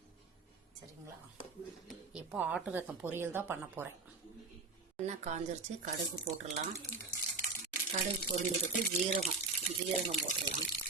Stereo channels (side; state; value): left; quieter; 3.9 dB